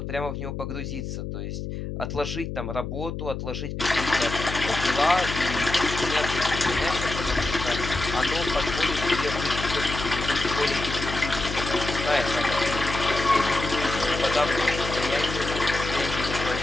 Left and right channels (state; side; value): noise; left; hum, 6 dB below the sound